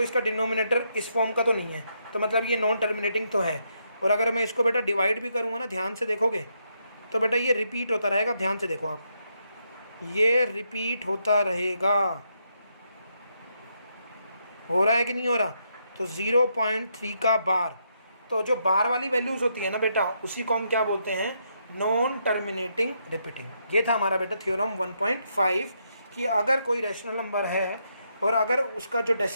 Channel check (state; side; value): inverted; both; correlation -0.78